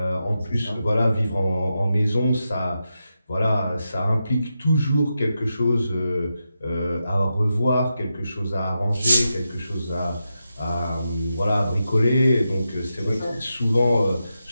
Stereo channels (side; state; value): both; inverted; correlation -0.88